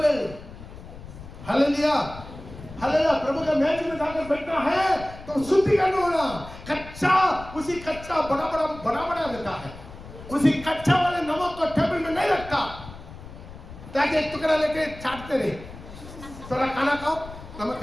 Hallelujah, hallelujah. प्रभु का मेज में जाकर बैठना है तो शुद्धिकरण होना। कच्चा, उसी कच्चा बड़ा रहता है, उसी कच्चा वाले नमक को टेबल में नहीं रखता ताकि एक टुकड़ा लेके चाटते रहे, थोड़ा खाना खाओ नमक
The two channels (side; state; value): left; noise; rumble, 15 dB below the sound